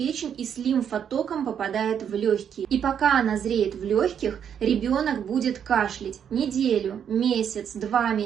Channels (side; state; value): left; quieter; 8.4 dB